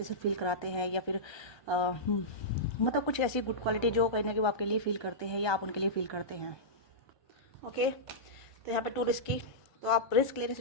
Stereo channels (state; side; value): late; right; 1.3 ms